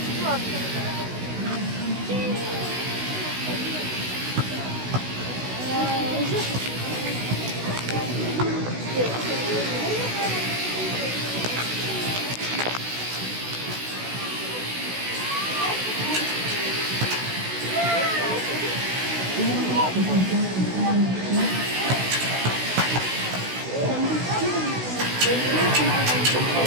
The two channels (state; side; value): late; left; 16 ms